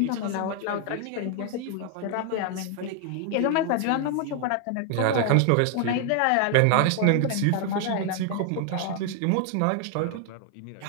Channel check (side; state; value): both; different; correlation 0.00